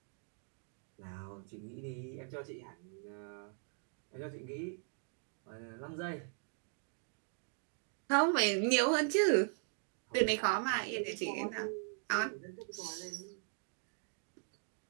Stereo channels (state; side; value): silent; left; 51 dB below the other